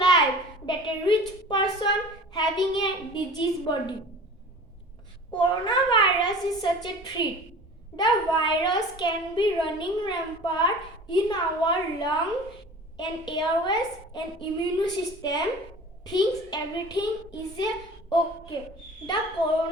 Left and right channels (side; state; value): both; normal; correlation 0.41